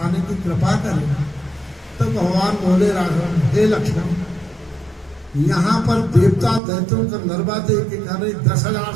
की कृपा करें। तो भगवान बोले राघव, हे लक्ष्मण, यहाँ पर देवता दैत्यों का नरवा दे के करे 10,000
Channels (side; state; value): left; drops out; at 6.6 s